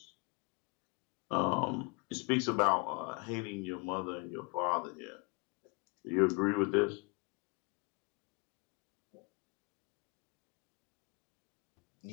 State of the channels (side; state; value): right; quieter; 30.0 dB